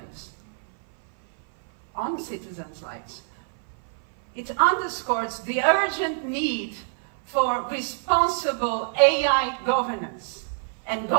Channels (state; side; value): silent; left; 57 dB below the other